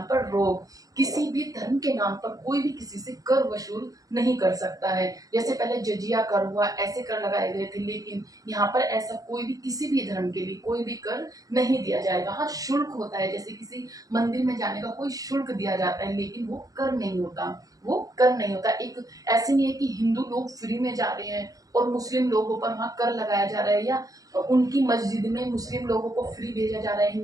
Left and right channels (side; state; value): left; late; 0.17 ms